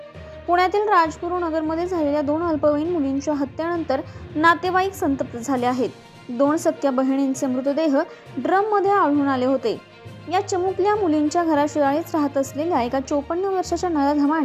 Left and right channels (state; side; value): identical; both; correlation 1.00